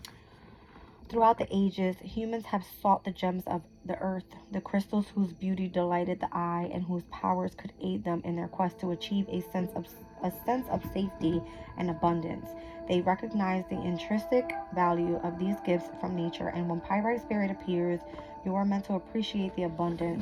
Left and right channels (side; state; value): both; identical; correlation 1.00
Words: Throughout the ages, humans have sought the gems of the earth, the crystals whose beauty delighted the eye and whose powers could aid them in their quest to achieve a sense of safety and abundance. They recognize the intrinsic value of these gifts from nature, and when Pyrite Spirit appears, you are meant to appreciate the